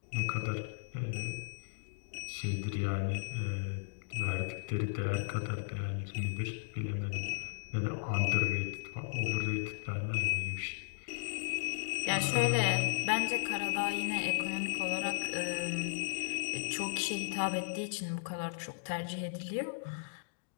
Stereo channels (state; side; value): silent; right; digital silence